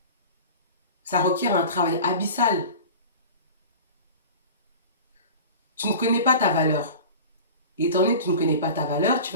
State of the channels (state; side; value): inverted; both; correlation -0.36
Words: Ça requiert un travail abyssal. Tu ne connais pas ta valeur. Et étant donné que tu ne connais pas ta valeur,